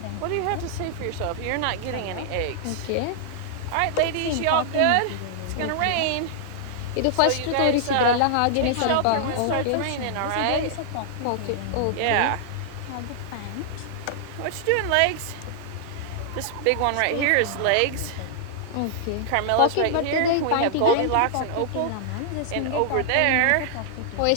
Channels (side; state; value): both; different; correlation -0.01